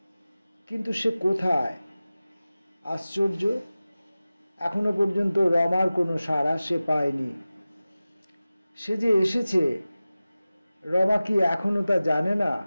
কিন্তু সে কোথায়? আশ্চর্য, এখনো পর্যন্ত রমার কোনো সাড়া সে পায়নি। সে যে এসেছে, রমা কি এখনো তা জানে না?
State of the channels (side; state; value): both; inverted; correlation -0.96